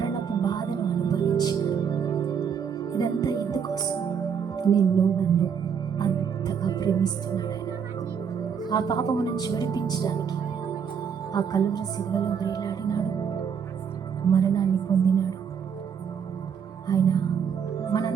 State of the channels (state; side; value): quieter; left; 7.1 dB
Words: బాధను అనుభవించినాడు. ఇదంతా ఎందుకోసం? నిన్ను నన్ను అంతగా ప్రేమిస్తున్నాడు ఆయన. ఆ పాపము నుంచి విడిపించడానికి ఆ కలువరి సిలువలో వేలాడినాడు, మరణాన్ని పొందినాడు. ఆయన